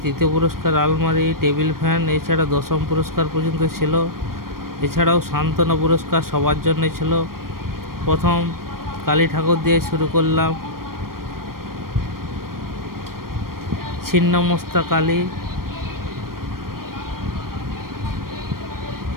তৃতীয় পুরস্কার আলমারি, টেবিল ফ্যান, এছাড়া দশম পুরস্কার পর্যন্ত ছিল। এছাড়াও সান্ত্বনা পুরস্কার সবার জন্য ছিল। প্রথম কালী ঠাকুর দিয়ে শুরু করলাম। ছিন্নমস্তা কালী,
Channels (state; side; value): late; left; 0.92 ms